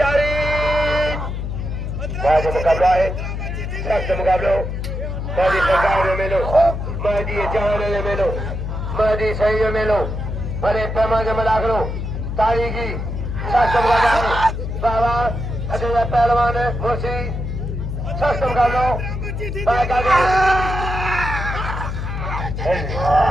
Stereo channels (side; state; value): left; noise; hum, 4 dB below the sound